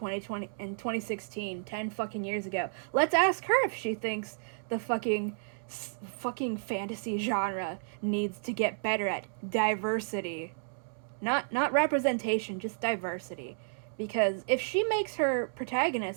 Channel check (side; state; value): left; silent; digital silence